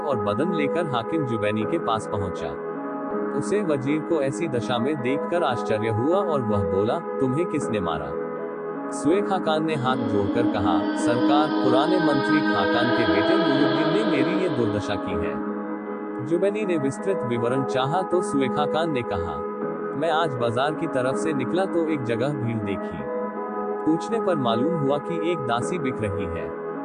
बदन लेकर हाकिम जुबैनी के पास पहुंचा। उसे वजीर को ऐसी दशा में देखकर आश्चर्य हुआ और वह बोला, तुम्हें किसने मारा? सुए खाकान ने हाथ जोड़कर कहा, सरकार, पुराने मंत्री खाकान के बेटे नूरुद्दीन ने मेरी ये दुर्दशा की है। जुबैनी ने विस्तृत विवरण चाहा तो सुए खाकान ने कहा, मैं आज बाजार की तरफ से निकला तो एक जगह भीड़ देखी। पूछने पर मालूम हुआ कि एक दासी बिक रही है।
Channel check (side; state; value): both; identical; correlation 1.00